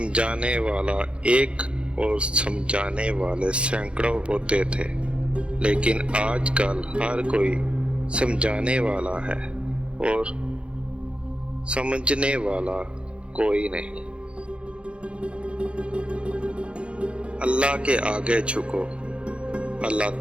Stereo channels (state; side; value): late; left; 0.058 ms